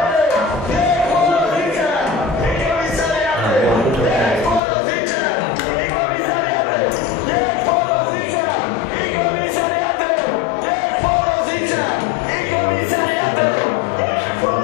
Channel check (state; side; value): drops out; right; at 4.6 s